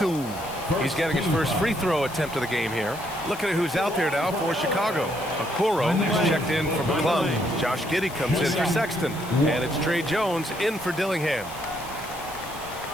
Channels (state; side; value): noise; left; hiss, 16 dB below the sound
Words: He's getting his first free throw attempt of the game here. Looking at who's out there now for Chicago. Okoro is checked in for McClung. Josh Giddey comes in for Sexton. And it's Trey Jones in for Dillingham.